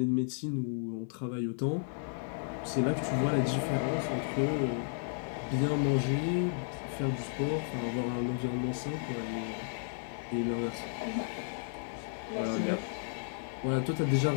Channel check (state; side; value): silent; right; digital silence